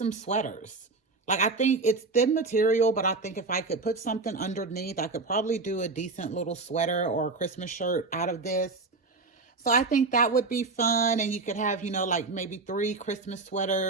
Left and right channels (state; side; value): quieter; left; 3.8 dB